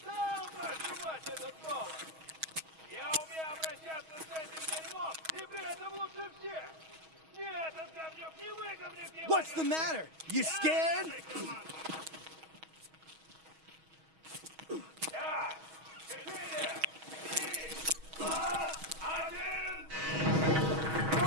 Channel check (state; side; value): late; left; 6.3 ms